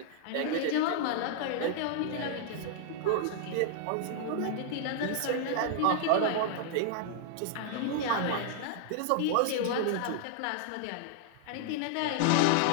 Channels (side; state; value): both; different; correlation -0.01